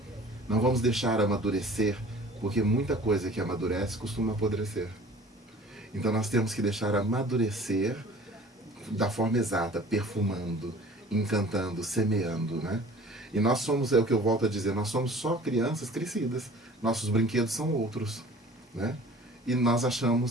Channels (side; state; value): both; normal; correlation 0.46